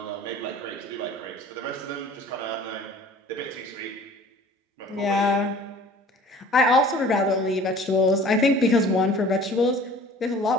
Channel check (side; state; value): both; normal; correlation 0.47